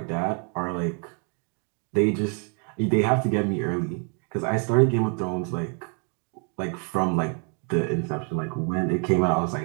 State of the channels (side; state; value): left; quieter; 39.8 dB